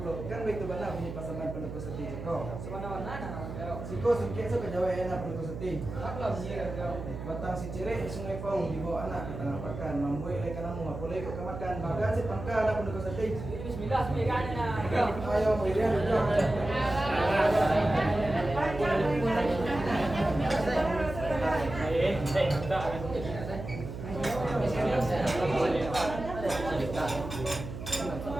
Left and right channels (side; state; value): right; noise; hum, 9 dB below the sound